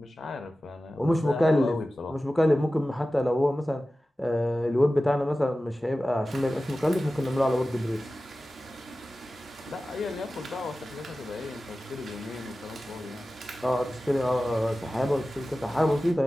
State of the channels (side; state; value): both; normal; correlation 0.95